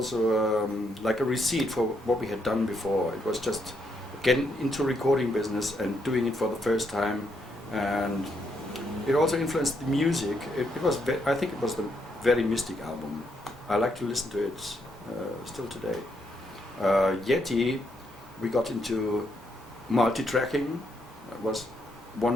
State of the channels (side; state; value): both; normal; correlation 0.77